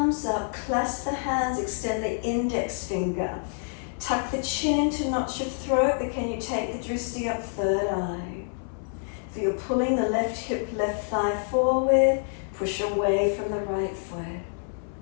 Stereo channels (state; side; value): silent; right; 60 dB below the other